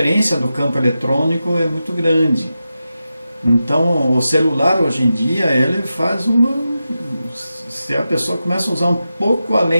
do campo eletrônico é muito grande. Então o celular hoje em dia, ele faz se a pessoa começa a usar um pouco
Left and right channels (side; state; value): both; inverted; correlation -0.91